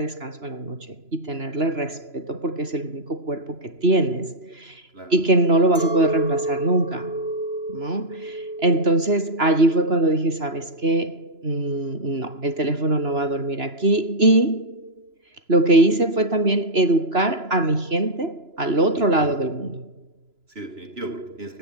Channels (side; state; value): left; late; 3.0 ms